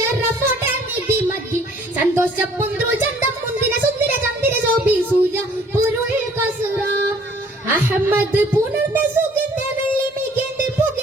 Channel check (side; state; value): both; normal; correlation 0.57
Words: നിധി മതി സന്തോഷ പുന്ത്രു ചന്തം മുന്തിര സുന്ദര ചന്ദിര ശോഭി സൂര്യ പൊരുൾ കസുറ അഹമ്മദ് പുണർന്ന സുഗന്ധ വെള്ളി മികേന്ദ്